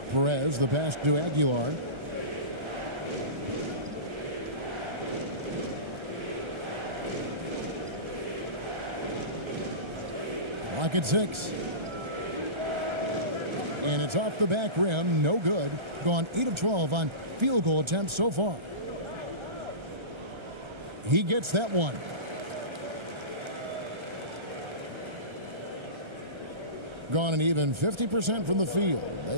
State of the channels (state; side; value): late; left; 1.3 ms